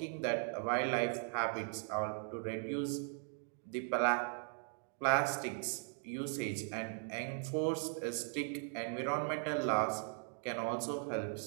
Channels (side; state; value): left; silent; 52 dB below the other